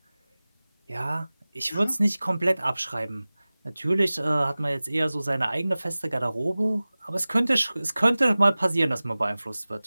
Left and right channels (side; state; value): both; inverted; correlation -0.98